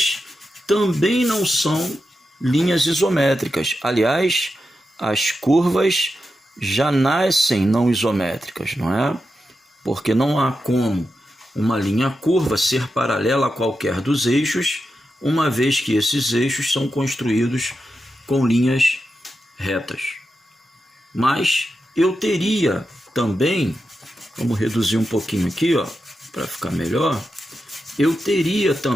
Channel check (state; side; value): normal; both; correlation 0.89